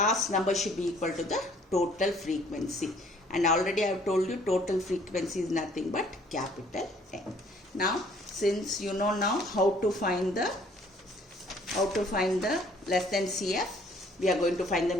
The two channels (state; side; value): normal; both; correlation 0.59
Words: number should be equal to the total frequency. And already I have told you total frequency is nothing but capital N. Now, since you know now how to find the less than CF, we are going to find the